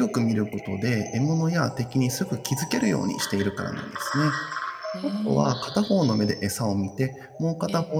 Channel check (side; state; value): both; identical; correlation 1.00